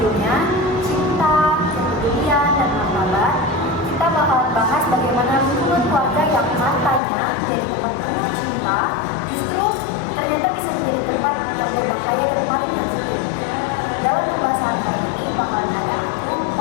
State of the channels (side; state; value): right; drops out; at 7.0 s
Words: cinta, kepedulian, dan martabat, kita bakal bahas bagaimana hubungan keluarga yang katanya jadi tempat penuh cinta, justru ternyata bisa menjadi tempat yang berbahaya dan paling sensitif. Dalam pembahasan kali ini bakalan ada aku,